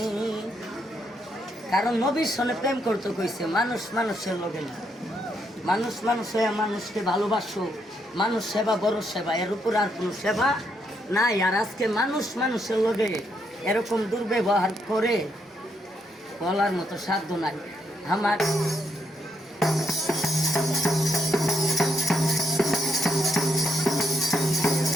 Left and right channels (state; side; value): normal; both; correlation 0.77